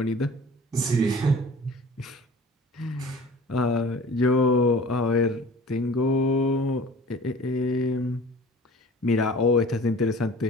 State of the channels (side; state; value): both; normal; correlation 0.44